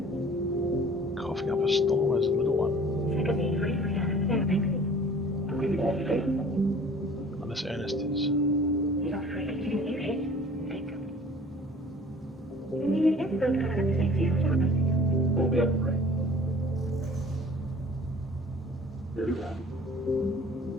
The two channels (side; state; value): both; normal; correlation 0.49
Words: Coughing up a storm as a little one. Unless Ernest is.